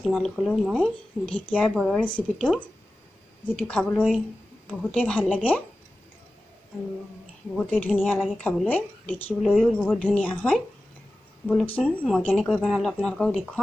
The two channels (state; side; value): normal; both; correlation 0.95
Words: মই ঢেকীয়াৰ বৰৰ ৰেচিপিটো, যিটো খাবলৈ বহুতেই ভাল লাগে আৰু বহুতেই ধুনীয়া লাগে খাবলৈ, দেখিবলৈও বহুত ধুনীয়া হয়। বলকচোন মই কেনেকৈ বনালোঁ আপোনালোকক